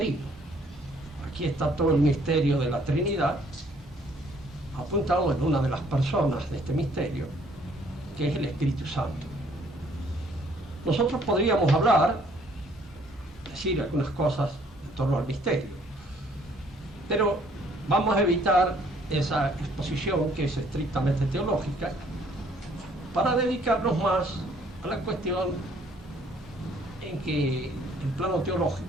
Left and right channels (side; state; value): both; normal; correlation 0.62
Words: Aquí está todo el misterio de la Trinidad apuntado en una de las personas de este misterio, que es el Espíritu Santo. Nosotros podríamos hablar, decir algunas cosas en torno al misterio, pero vamos a evitar esa exposición que es estrictamente teológica para dedicarnos más a la cuestión en que el plano